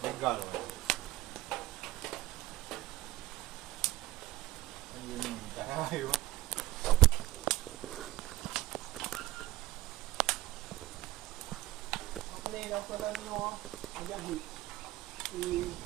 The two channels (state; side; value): quieter; left; 16.1 dB